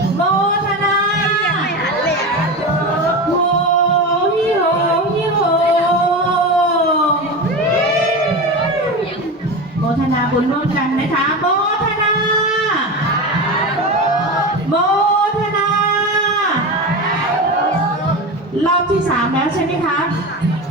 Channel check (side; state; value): both; normal; correlation 0.24